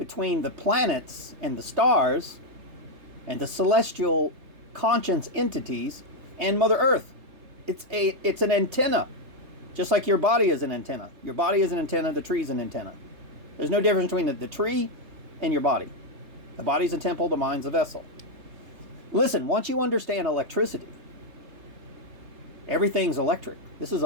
the planets and the stars and the celestial conscience entities and Mother Earth. It's an antenna, just like your body is an antenna. Your body is an antenna, the tree is an antenna. There's no difference between the tree and your body. The body's a temple, the mind's a vessel. Listen, once you understand electricity, everything's electric. This is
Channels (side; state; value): left; late; 3.3 ms